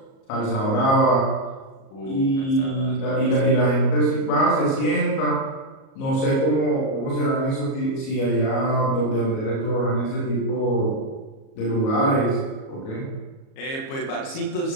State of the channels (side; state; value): right; late; 37 ms